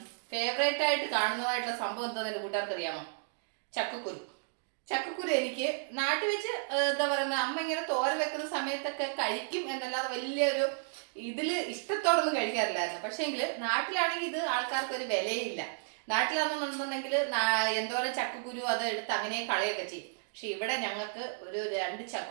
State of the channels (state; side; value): silent; left; digital silence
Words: ഫേവറേറ്റ് ആയിട്ട് കാണുന്നതായിട്ടുള്ള സംഭവം എന്താണെന്ന് എൻ്റെ കൂട്ടുകാർക്ക് അറിയാമോ? ചക്കക്കുരു. ചക്കക്കുരു എനിക്ക് നാട്ടിൽ വെച്ച് എന്താ പറയുന്നത്, അമ്മ ഇങ്ങനെ തോര വെക്കുന്ന സമയത്തൊക്കെ കഴിക്കും എന്നല്ലാതെ വലിയൊരു ഇതിൽ ഇഷ്ടത്തോടൊന്നും കഴിക്കാറില്ലായിരുന്നു. പക്ഷേങ്കിൽ നാട്ടിലാണെങ്കിൽ ഇത് ആൾക്കാർക്ക് ഒരു വിലയില്ല. നാട്ടിലാണെന്നുണ്ടെന്നുണ്ടെങ്കിൽ എന്തോരം ചക്കക്കുരു അത് എടുത്ത് അങ്ങനെ കളയൊക്കെ ചെയ്യും. പക്ഷെ ഇവിടെ ഞങ്ങൾക്ക് ഒരു 2